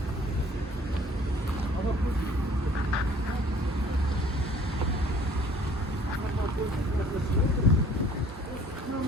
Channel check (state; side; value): normal; both; correlation 0.55